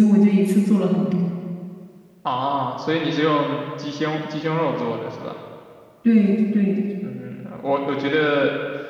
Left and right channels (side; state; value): both; identical; correlation 1.00